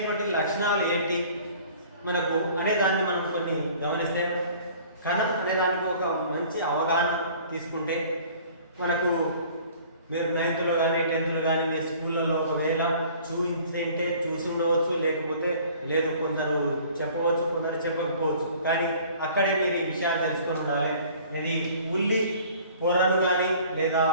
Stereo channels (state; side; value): inverted; both; correlation -0.50